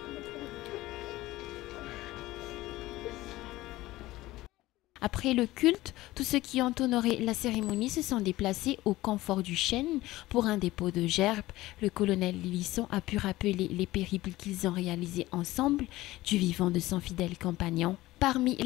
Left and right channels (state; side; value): quieter; right; 17.6 dB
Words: Après le culte, tous ceux qui ont honoré la cérémonie se sont déplacés au confort du chêne pour un dépôt de gerbes. Le colonel Lilisson a pu rappeler les périples qu'ils ont réalisés ensemble du vivant de son fidèle compagnon. Parmi